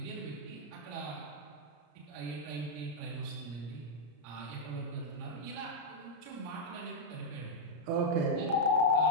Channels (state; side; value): late; left; 34 ms